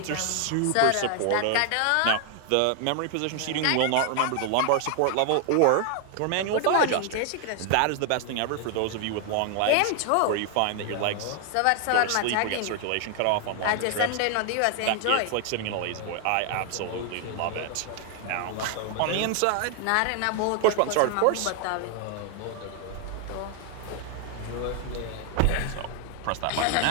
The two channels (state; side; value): different; both; correlation 0.00